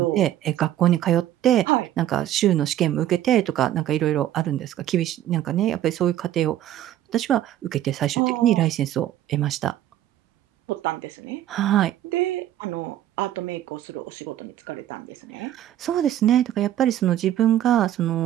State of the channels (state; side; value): quieter; left; 12.2 dB